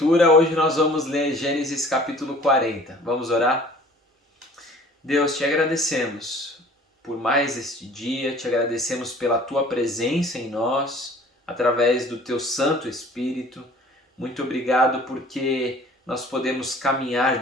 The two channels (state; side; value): normal; both; correlation 0.50